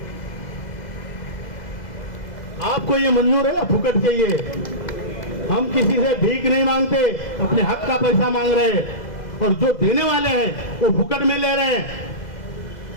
आपको ये मंजूर है? फुकट चाहिए? हम किसी से भीख नहीं मांगते, अपने हक का पैसा मांग रहे हैं, और जो देने वाले हैं वो फुकट में ले रहे हैं,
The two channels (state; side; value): late; right; 2.0 ms